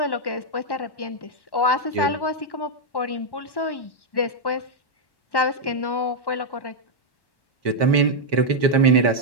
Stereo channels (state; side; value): late; right; 1.1 ms